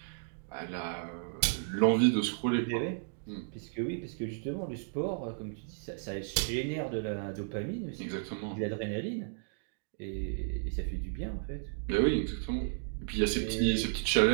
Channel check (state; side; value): silent; left; digital silence